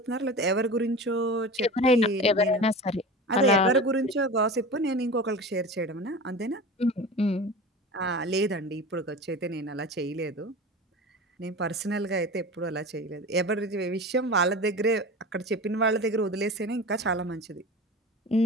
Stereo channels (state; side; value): normal; both; correlation 0.32